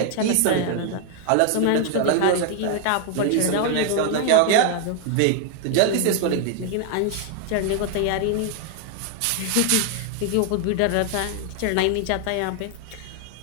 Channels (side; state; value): both; different; correlation 0.00